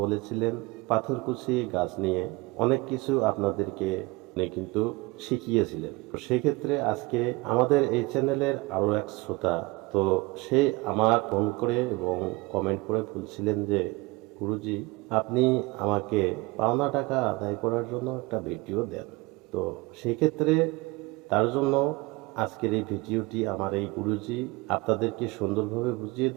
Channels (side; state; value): left; quieter; 23.6 dB